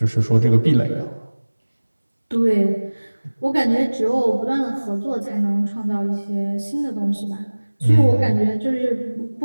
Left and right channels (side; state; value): both; inverted; correlation -1.00